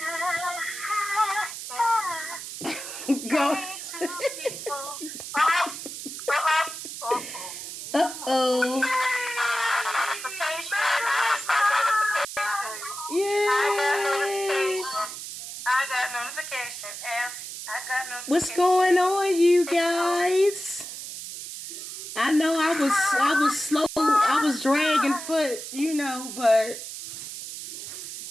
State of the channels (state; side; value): noise; right; hiss, 9 dB below the sound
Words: Go. Uh-oh. Yay. I got notification. What's going on, you guys? I know I was slow. I was dragging foot, you know, but